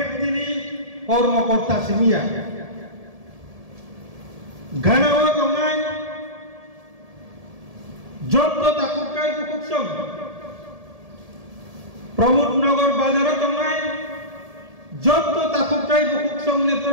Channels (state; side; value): late; left; 1.7 ms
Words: नि কর্মকর্তা সিমিয়া গানাও দঙাই যত তাকুকাই বুকুকসং প্রমোদনগর বাজার দঙাই যত তাকুকাই বুকুকসং নি